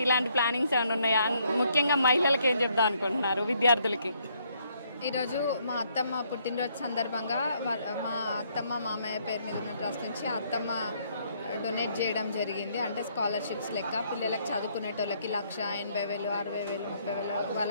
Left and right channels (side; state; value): both; inverted; correlation -0.70